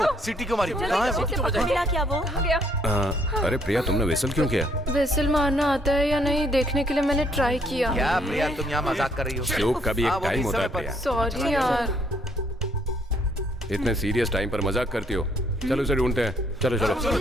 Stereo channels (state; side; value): normal; both; correlation 0.68